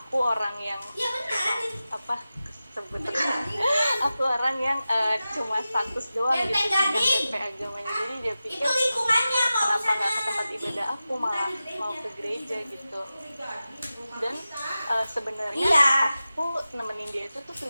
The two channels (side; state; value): both; inverted; correlation -0.94